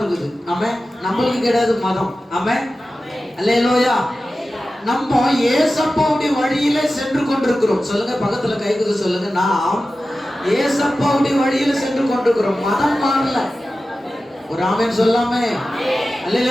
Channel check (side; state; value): both; normal; correlation 0.94